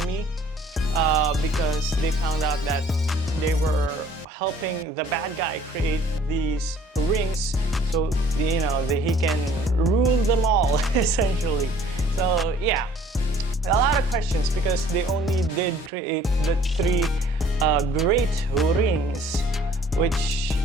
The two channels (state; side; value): normal; both; correlation 0.55